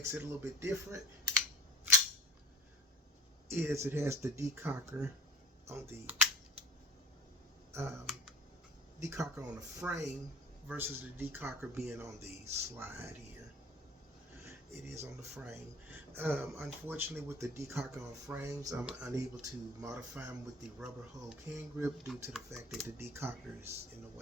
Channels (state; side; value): normal; both; correlation 0.39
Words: it a little bit different is it has the decocker on the frame versus the decocker being on the slide here. It is on the frame. Unfortunately, with the decocker on frames, I'm unable to modify them with the rubber hole can grip due to the fact that the decocker is in the